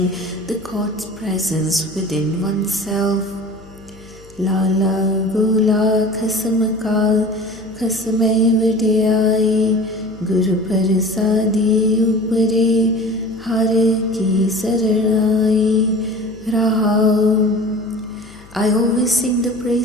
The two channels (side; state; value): left; noise; hum, 23 dB below the sound